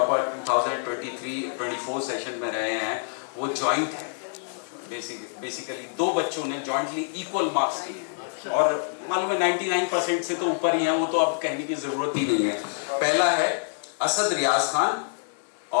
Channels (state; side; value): silent; right; digital silence